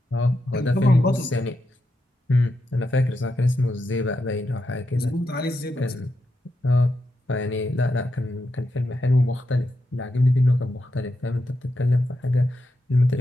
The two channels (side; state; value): both; normal; correlation 0.85